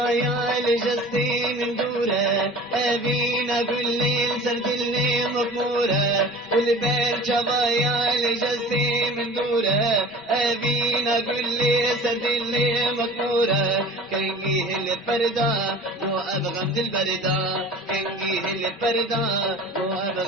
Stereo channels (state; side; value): normal; both; correlation 0.41